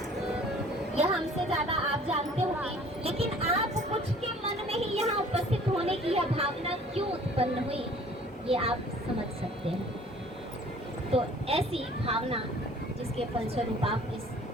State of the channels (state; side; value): normal; both; correlation 0.52